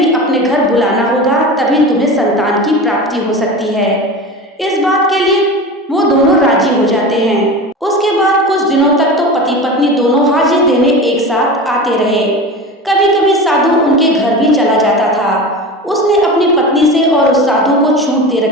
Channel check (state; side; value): normal; both; correlation 0.30